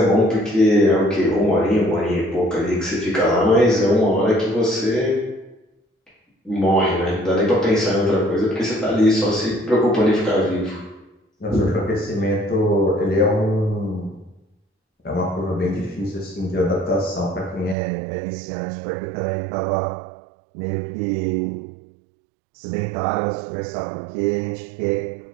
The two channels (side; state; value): left; drops out; at 17.8 s